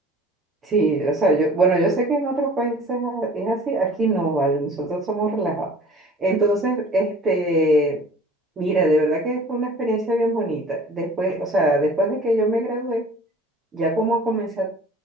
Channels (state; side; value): normal; both; correlation 0.46